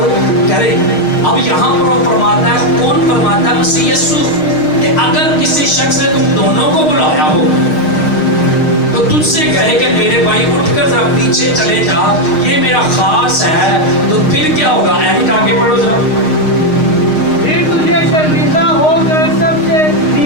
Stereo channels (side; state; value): right; late; 6.5 ms